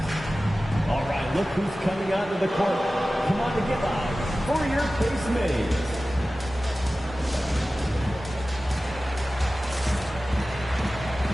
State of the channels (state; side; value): normal; both; correlation 0.96